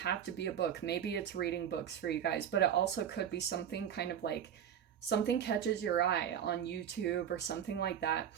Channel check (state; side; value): quieter; left; 9.2 dB